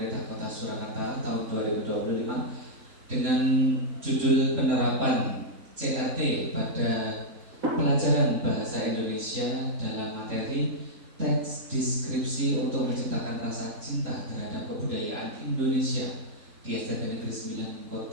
Kota Surakarta tahun 2025 dengan judul penerapan CRT pada pelajaran bahasa Indonesia dalam materi teks deskripsi untuk menciptakan rasa cinta terhadap kebudayaan Indonesia di SMP Negeri 9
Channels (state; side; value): late; left; 3.7 ms